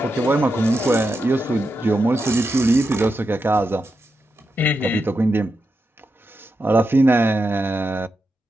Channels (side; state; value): both; normal; correlation 0.87